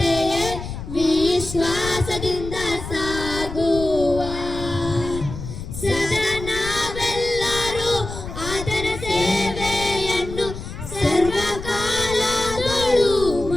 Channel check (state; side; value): noise; left; rumble, 9 dB below the sound